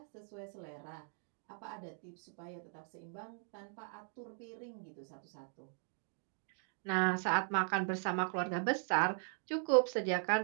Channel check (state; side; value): silent; left; 52 dB below the other